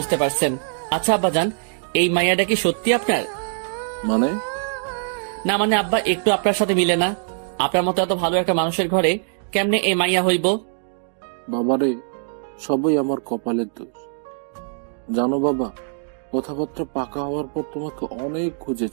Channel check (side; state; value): left; silent; digital silence